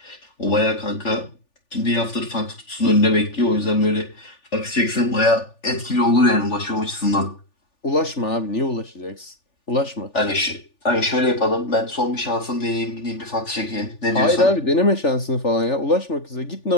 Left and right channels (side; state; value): right; late; 3.4 ms